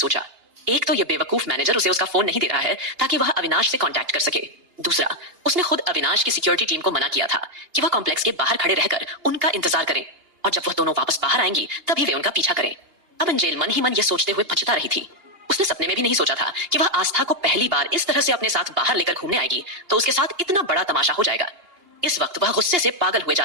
एक तो ये बेवकूफ मैनेजर उसे उसका फोन नहीं दे रहा है ताकि वह अविनाश से कांटेक्ट कर सके। दूसरा, उसने खुद अविनाश की सिक्योरिटी टीम को मना किया था कि वह कॉम्प्लेक्स के बाहर खड़े रहकर उनका इंतजार करें और जब वह दोनों वापस बाहर आएंगी तभी वे उनका पीछा करें। अब एंजल मन ही मन यह सोचते हुए पछता रही थी। उसने सपने में भी नहीं सोचा था कि वह आस्था को पहली बार इस तरह से अपने साथ बाहर लेकर घूमने आएगी तो उसके साथ इतना बड़ा तमाशा हो जाएगा। इस वक्त वह गुस्से से पागल हुए जा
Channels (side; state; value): left; late; 2.8 ms